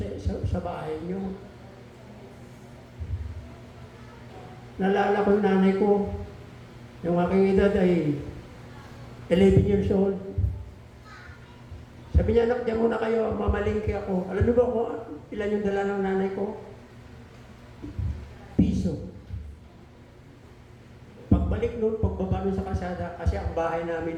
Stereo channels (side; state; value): both; identical; correlation 1.00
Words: sa bahay nyo. Nalala ko yung nanay ko. Yung aking edad ay 11 years old. Sabi niya, anak, diyan muna kayo, mamalingki ako. Alam niyo ba kung ilan yung dala ng nanay ko? Piso. Pagbalik noon, pagbaba noon sa kalsada, kasi ang bahay